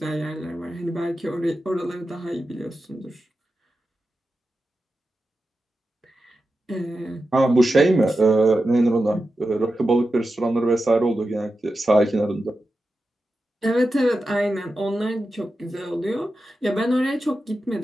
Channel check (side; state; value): both; normal; correlation 0.91